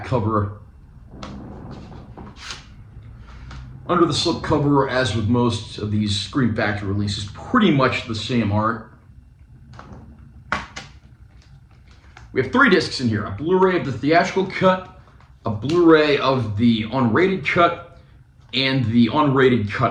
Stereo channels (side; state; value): both; identical; correlation 1.00